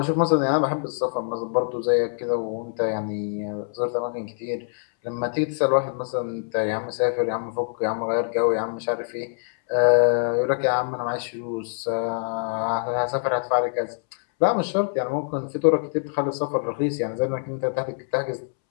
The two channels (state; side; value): silent; right; 62 dB below the other